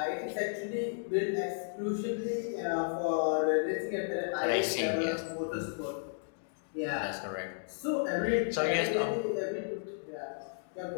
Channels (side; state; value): right; silent; digital silence